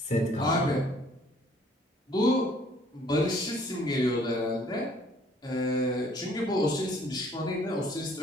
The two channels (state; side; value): normal; both; correlation 0.59